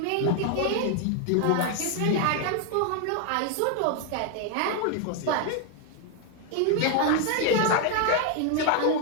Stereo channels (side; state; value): both; different; correlation 0.01